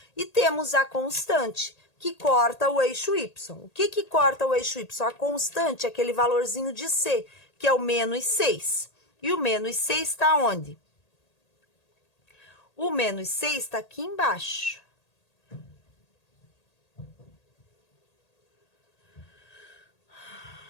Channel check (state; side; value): late; right; 1.8 ms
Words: E temos a constante, que corta o eixo y. O que corta o eixo y? A constante é aquele valorzinho de c, que é o menos 6. E o menos 6 está onde? O menos 6 está aqui embaixo.